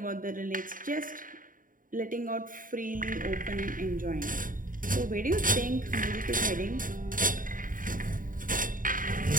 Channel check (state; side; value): late; left; 0.39 ms